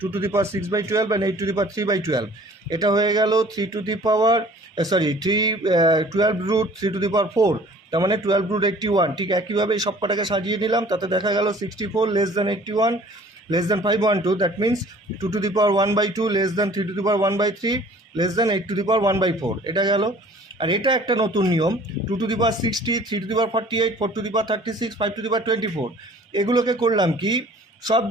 অ্যান্ড 8^3/12। এটা হয়ে গেল 12√3^4, তার মানে 12√81। ঠিক একইভাবে সব কটাকে সাজিয়ে নিলাম, তাতে দেখা গেল 64 less than 81 less than 512, that means 2^1/2 less than 3^1/3 less than 8^1/4। এটা গেল। আর এটা একটা নতুন নিয়ম, 2^60, 3^48, 4^36, 5^24। এগুলোকে করলাম কি,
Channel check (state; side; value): normal; both; correlation 0.51